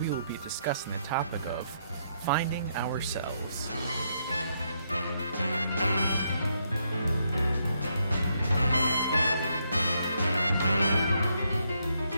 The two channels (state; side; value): inverted; both; correlation -0.77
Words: will be discussing the topic of finding ourselves.